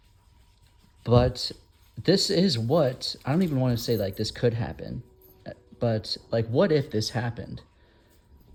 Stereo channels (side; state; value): both; identical; correlation 1.00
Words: but this is what, I don't even want to say like this could happen, but like, what if this happened?